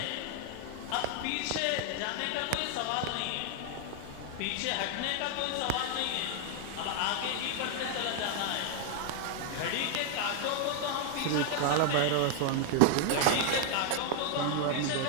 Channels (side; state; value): both; different; correlation 0.00